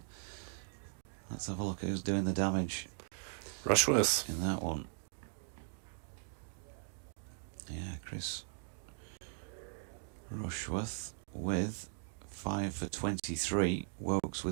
Let's have a look at who's doing the damage. Rushworth In that one. Yeah, Chris Rushworth with 5 for 23. Wokes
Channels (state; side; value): silent; left; digital silence